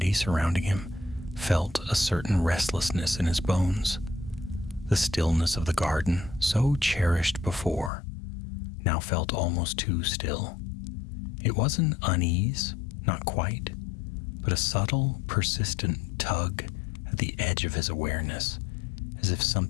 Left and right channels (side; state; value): right; drops out; at 7.9 s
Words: surrounding him, felt a certain restlessness in his bones. The stillness of the garden, so cherished before, now felt almost too still. It wasn't unease, not quite, but a subtle, persistent tug at the edge of his awareness, as if